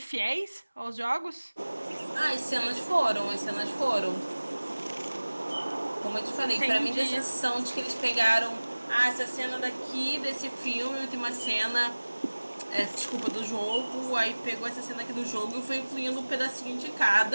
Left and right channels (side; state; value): both; inverted; correlation -1.00